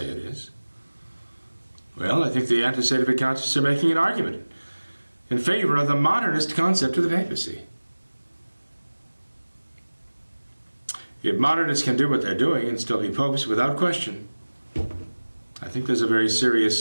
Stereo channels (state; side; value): inverted; both; correlation -1.00